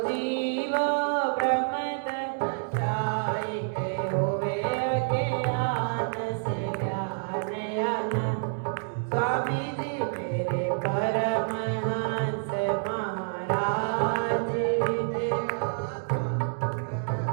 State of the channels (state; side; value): silent; left; digital silence